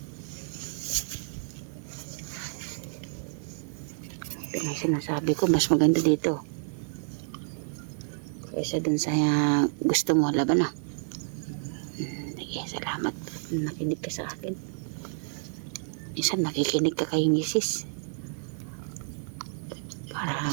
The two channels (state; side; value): silent; left; digital silence